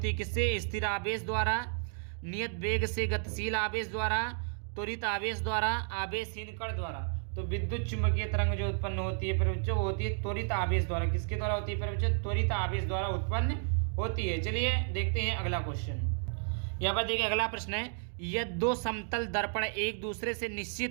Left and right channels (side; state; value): left; silent; 56 dB below the other